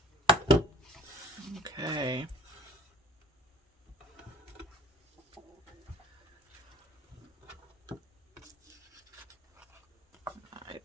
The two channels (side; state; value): both; normal; correlation 0.47